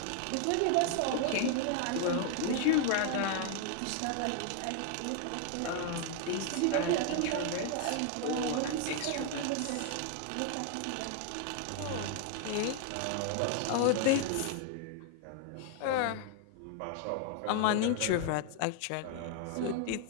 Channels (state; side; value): different; both; correlation 0.00